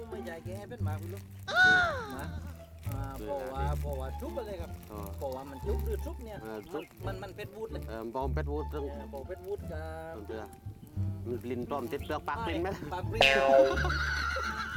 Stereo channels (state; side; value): identical; both; correlation 1.00